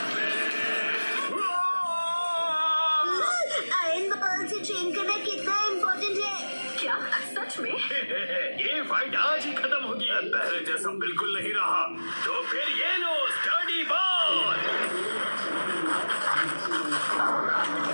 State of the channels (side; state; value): both; inverted; correlation -1.00